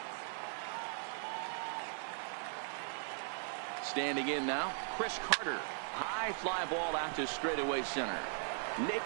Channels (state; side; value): silent; left; 52 dB below the other